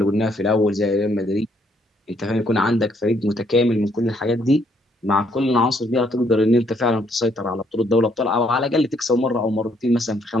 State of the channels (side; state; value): both; normal; correlation 0.69